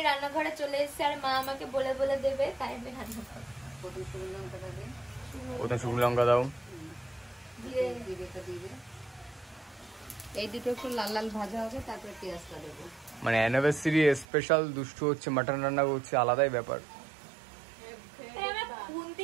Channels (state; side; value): drops out; left; at 14.2 s